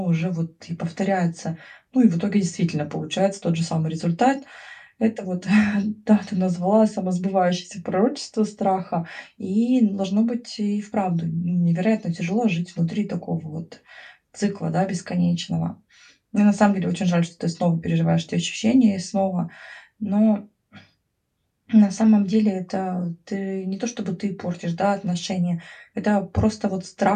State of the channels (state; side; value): identical; both; correlation 1.00